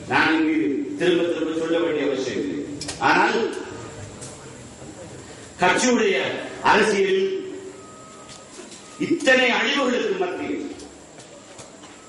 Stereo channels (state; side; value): identical; both; correlation 1.00